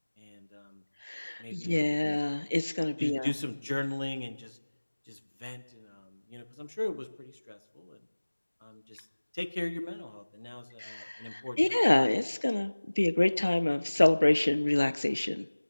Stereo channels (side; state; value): both; inverted; correlation -1.00